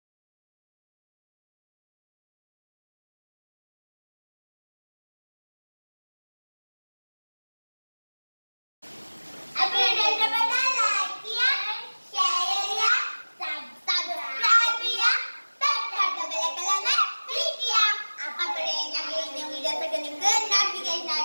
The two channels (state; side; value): inverted; both; correlation -1.00